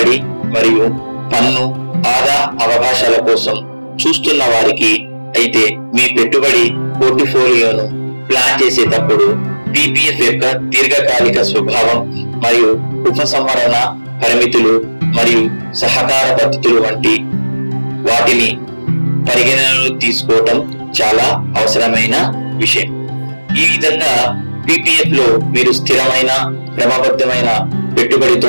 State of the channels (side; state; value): both; inverted; correlation -1.00